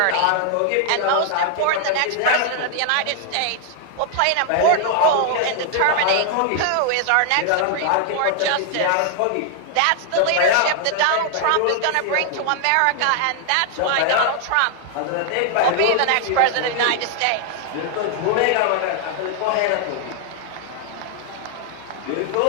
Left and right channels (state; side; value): different; both; correlation 0.00